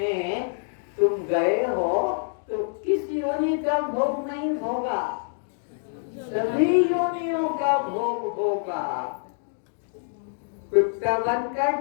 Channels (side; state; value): right; silent; digital silence